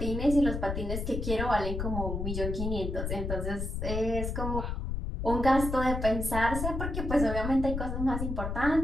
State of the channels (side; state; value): left; noise; rumble, 3 dB below the sound